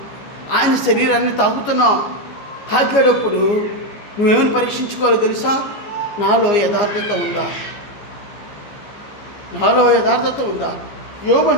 ఆయన శరీరాన్ని తాగుతున్నాం. తాగేటప్పుడు నువ్వేమని పరీక్షించుకోవాలో తెలుసా, నాలో యథార్థత ఉందా. యోబు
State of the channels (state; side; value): late; right; 15 ms